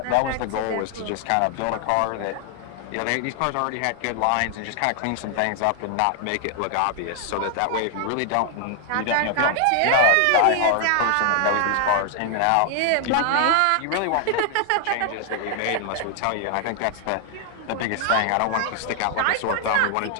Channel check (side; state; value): both; different; correlation 0.00